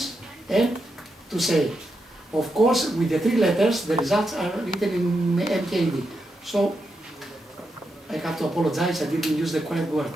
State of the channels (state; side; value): normal; both; correlation 0.85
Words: and to say. Of course, with the 3 letters, the results are written in MKD. So, I have to apologize, I didn't use the correct word.